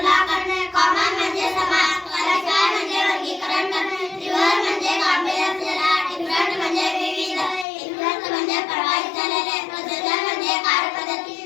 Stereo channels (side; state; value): right; drops out; at 7.7 s